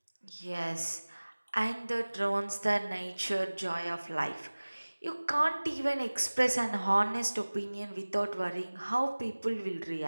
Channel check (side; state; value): both; inverted; correlation -1.00